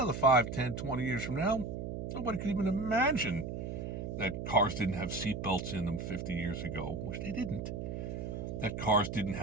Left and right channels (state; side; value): noise; right; hum, 5 dB below the sound